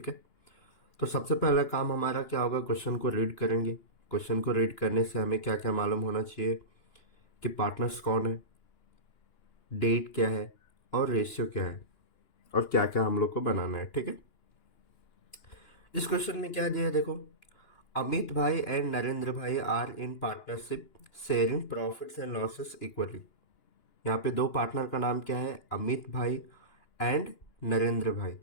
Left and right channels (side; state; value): right; late; 2.9 ms